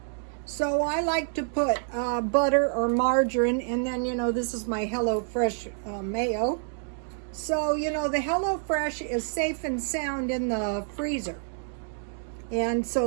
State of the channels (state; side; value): silent; left; digital silence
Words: So I like to put butter or margarine, and then, this is my HelloFresh mayo. So, the HelloFresh is safe and sound in the freezer. And